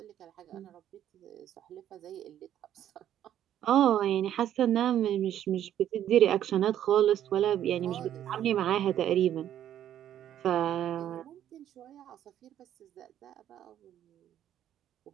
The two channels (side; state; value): left; quieter; 11.0 dB